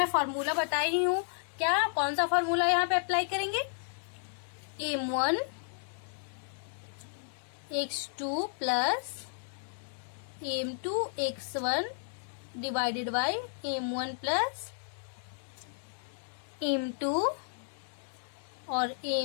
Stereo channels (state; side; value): silent; right; digital silence